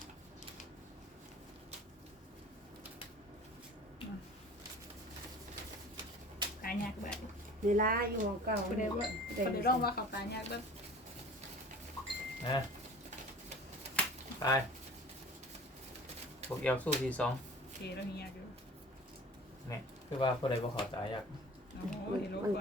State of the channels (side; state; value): both; normal; correlation 0.43